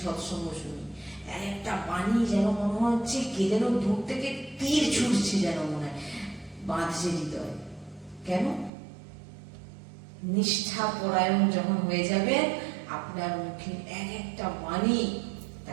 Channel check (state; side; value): drops out; left; at 8.7 s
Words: সৎসঙ্গ শুনি, একটা বাণী যেন মনে হচ্ছে কে যেন দূর থেকে তীর ছুটছে, যেন মনে হয় বাঁধছে হৃদয়। কেন? নিষ্ঠা পরায়ণ যখন হয়ে যাবে, আপনার মুখে একটা বাণী